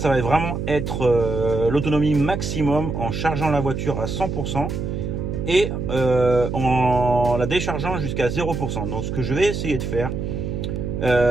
va vraiment être l'autonomie maximum en chargeant la voiture à 100% et en la déchargeant jusqu'à 0%. Donc ce que je vais essayer de faire,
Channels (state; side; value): noise; right; hum, 3 dB below the sound